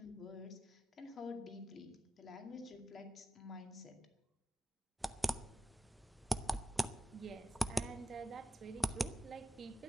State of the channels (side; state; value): both; normal; correlation 0.91